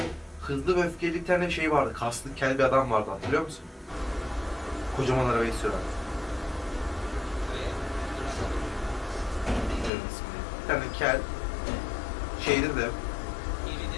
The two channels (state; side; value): drops out; right; at 9.9 s